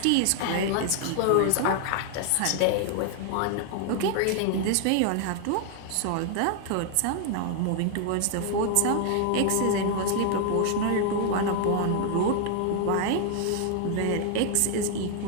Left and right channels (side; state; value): both; different; correlation 0.00